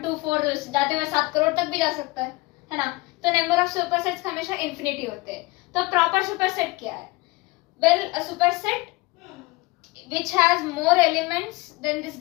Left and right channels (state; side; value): quieter; right; 22.6 dB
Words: 2 4 जाते हुए 7 करोड़ तक भी जा सकता है ना। तो नंबर ऑफ सुपरसेट्स हमेशा इन्फिनिटी होते हैं। तो प्रॉपर सुपरसेट क्या है? Well, a superset which has more elements than this